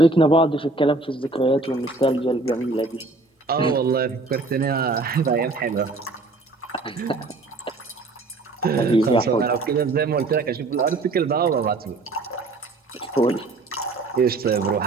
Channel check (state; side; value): quieter; left; 3.4 dB